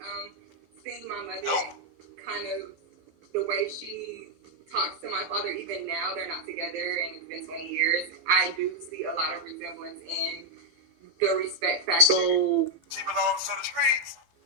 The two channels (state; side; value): late; left; 12 ms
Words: seeing my mother kind of the way she talks to my father, even now they're not together and it's been 20 years, I do see a lot of resemblance in the respect factor. So She belongs to the streets.